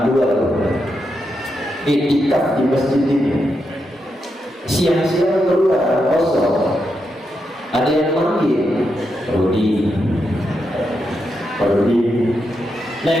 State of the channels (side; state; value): both; normal; correlation 0.84